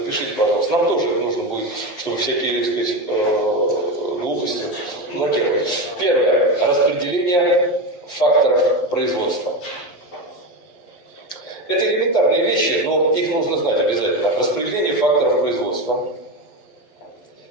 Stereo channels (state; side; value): late; right; 11 ms